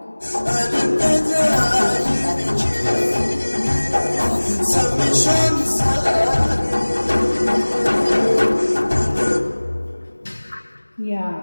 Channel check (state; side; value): inverted; both; correlation -1.00